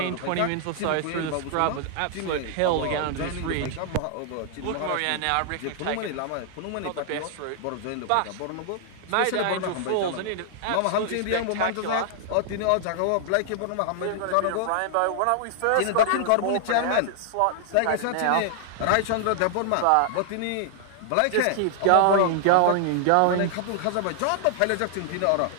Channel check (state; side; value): different; both; correlation 0.00